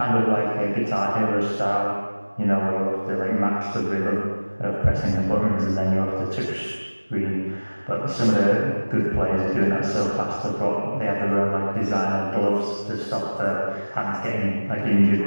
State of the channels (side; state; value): both; inverted; correlation -1.00